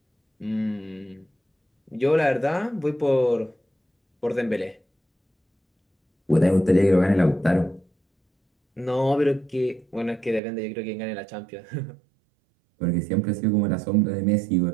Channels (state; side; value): drops out; left; at 10.4 s